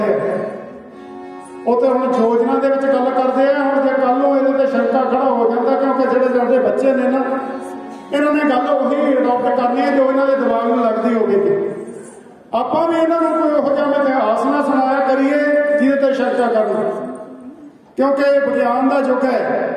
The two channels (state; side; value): identical; both; correlation 1.00